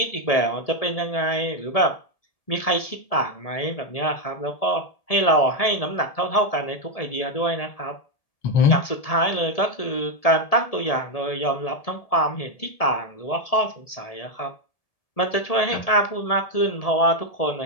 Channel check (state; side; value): late; right; 1.7 ms